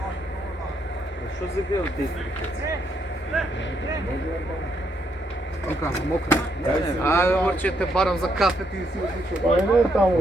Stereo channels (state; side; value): normal; both; correlation 0.75